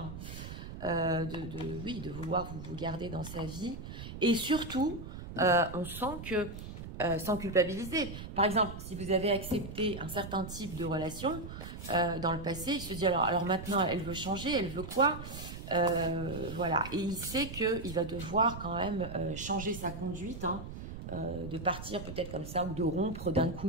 oui, de vouloir vous garder dans sa vie. Et surtout, on sent que, sans culpabiliser, par exemple, si vous avez accepté un certain type de relation dans le passé, il se dit, alors maintenant, elle veut changer, elle veut quoi? Voilà, et il sait qu'il va devoir quand même changer sa conduite, hein, de partir peut-être comme ça, ou de rompre d'un coup,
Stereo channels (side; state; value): right; noise; rumble, 10 dB below the sound